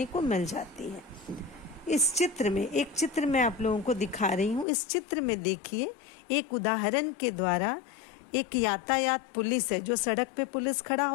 को मिल जाती है। इस चित्र में एक चित्र मैं आप लोगों को दिखा रही हूँ। इस चित्र में देखिए, एक उदाहरण के द्वारा एक यातायात पुलिस है, जो सड़क पे पुलिस खड़ा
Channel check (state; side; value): drops out; right; at 4.7 s